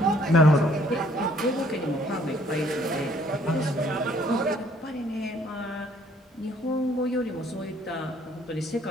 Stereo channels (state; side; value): normal; both; correlation 0.62